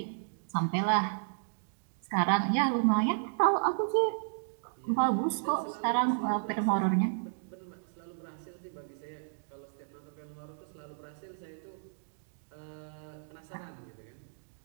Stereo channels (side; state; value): left; silent; digital silence